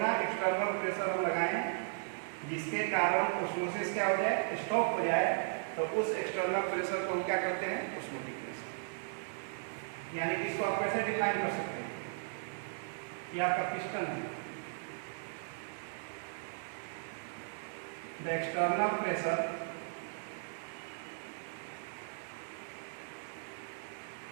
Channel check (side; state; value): left; silent; digital silence